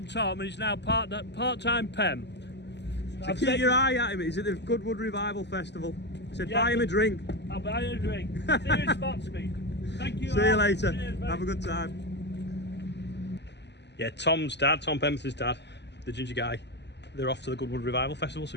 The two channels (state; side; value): late; right; 0.50 ms